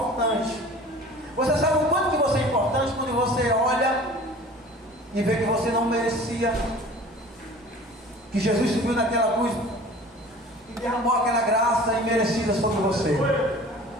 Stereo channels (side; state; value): both; normal; correlation 0.44